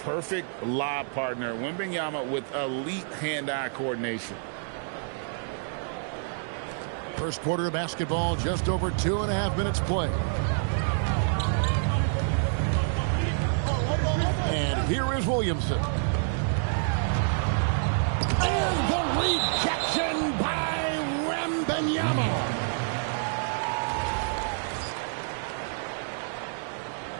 perfect lob partner. Wembanyama with elite hand-eye coordination. First quarter of basketball, just over 2.5 minutes play. And here is Williamson. And the rejection by Wembanyama.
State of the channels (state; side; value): silent; left; digital silence